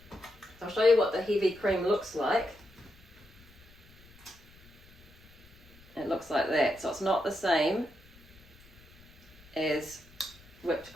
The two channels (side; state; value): left; noise; rumble, 25 dB below the sound